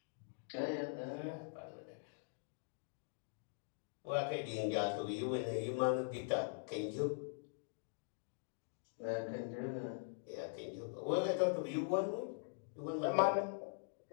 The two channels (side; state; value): right; silent; digital silence